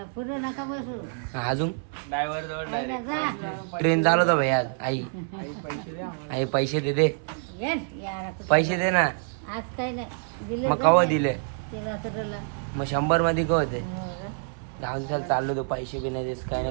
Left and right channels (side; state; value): left; silent; 60 dB below the other